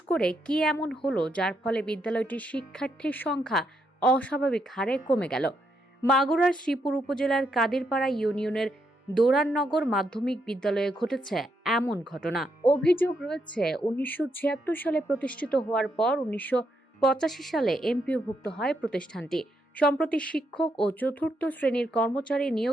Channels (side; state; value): both; normal; correlation 0.78